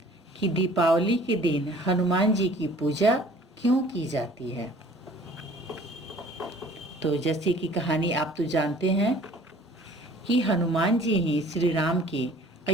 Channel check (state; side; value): normal; both; correlation 0.52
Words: कि दीपावली के दिन हनुमान जी की पूजा क्यों की जाती है? तो जैसे कि कहानी आप तो जानते हैं कि हनुमान जी ही श्री राम के